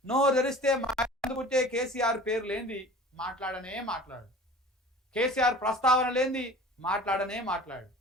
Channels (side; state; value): both; normal; correlation 0.42